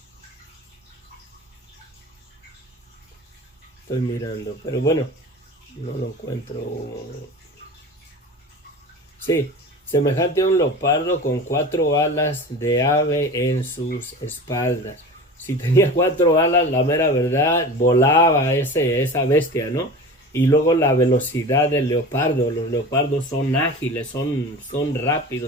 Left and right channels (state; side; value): normal; both; correlation 0.34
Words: Estoy mirando, pero bueno, no lo encuentro. Sí, semejante a un leopardo con 4 alas de ave en sus espaldas. Si tenía 4 alas, la mera verdad, volaba esa bestia, ¿no? Y luego la velocidad del leopardo. Los leopardos son ágiles, son